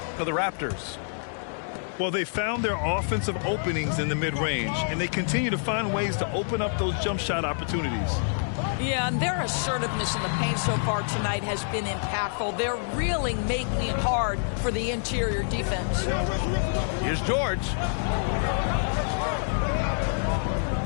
for the Raptors. Well, they found their offensive openings in the mid-range, and they continue to find ways to open up those jump shot opportunities. Yeah, and their assertiveness in the paint so far tonight has been impactful. They're really making it hard for the interior defense. Here's George.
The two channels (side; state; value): right; silent; digital silence